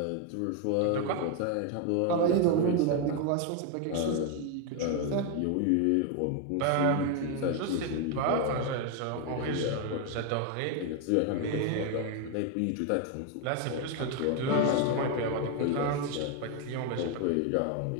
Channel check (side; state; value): both; different; correlation 0.01